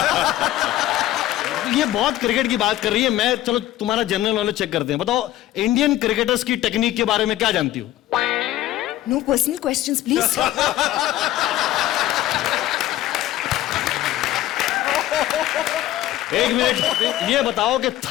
ये बहुत क्रिकेट की बात कर रही है। मैं, चलो तुम्हारा जनरल नॉलेज चेक करते हैं। बताओ, इंडियन क्रिकेटर्स की टेक्निक के बारे में क्या जानती हो? No personal questions please. एक मिनट, ये बताओ कि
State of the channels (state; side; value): quieter; right; 14.3 dB